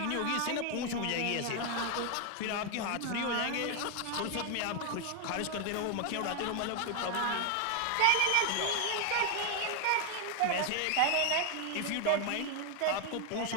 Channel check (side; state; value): both; different; correlation 0.01